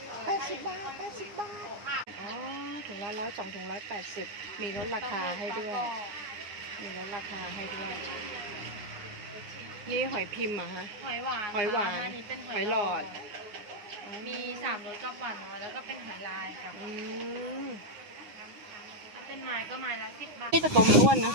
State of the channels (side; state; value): left; late; 9.7 ms